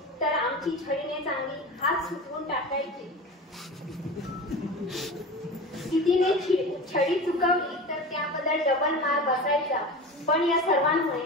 तर आमची छडीने चांगली हात सुटवून टाकायची. तिने छडी चुकवली तर त्याबद्दल डबल मार बसायचा. पण या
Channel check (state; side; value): normal; both; correlation 0.31